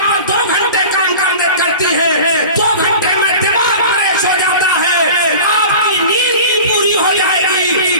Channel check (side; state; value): both; inverted; correlation -0.37